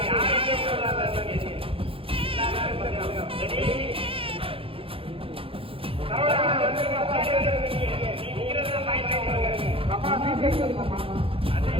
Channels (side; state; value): left; late; 0.27 ms